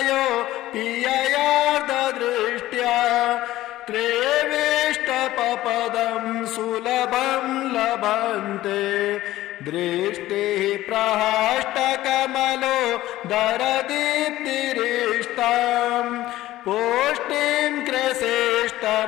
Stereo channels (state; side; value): quieter; right; 15.6 dB